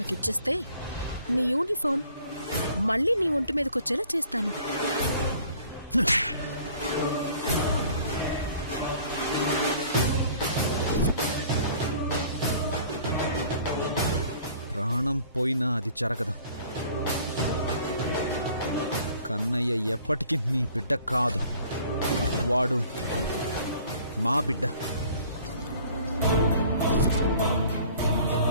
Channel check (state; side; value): inverted; both; correlation -0.53